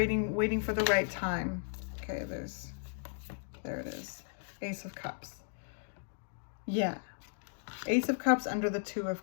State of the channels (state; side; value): silent; right; digital silence